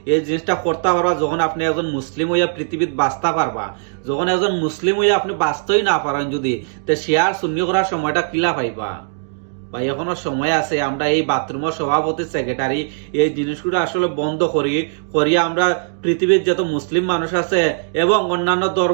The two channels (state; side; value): silent; left; digital silence